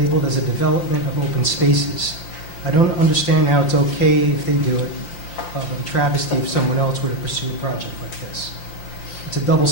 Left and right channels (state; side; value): late; right; 5.7 ms